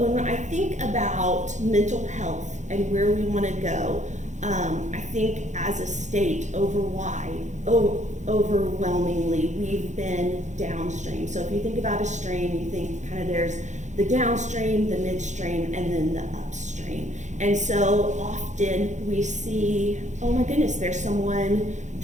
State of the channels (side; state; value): left; late; 0.35 ms